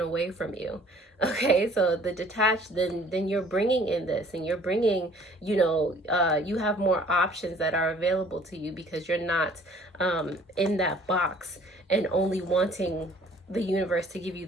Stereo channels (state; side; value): normal; both; correlation 0.55